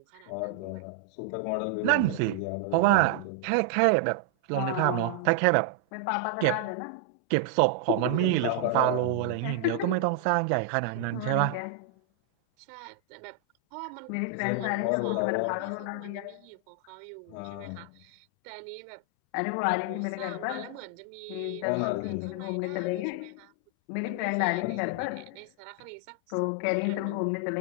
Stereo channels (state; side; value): different; both; correlation 0.00